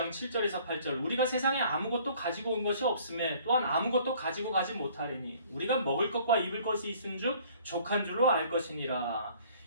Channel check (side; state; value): both; inverted; correlation -0.55